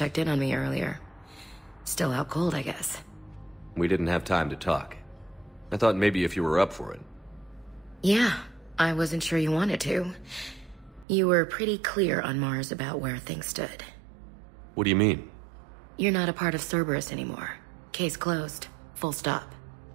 in on me earlier. Still out cold, I guess. We didn't have time to talk. I thought maybe if you were up for it. Yeah, I wasn't sure you wanted to. You were pretty clear on Mars about where things stood. What do you mean? You're not a part of Cerberus anymore. Case closed. Full stop.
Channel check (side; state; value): left; drops out; at 11.1 s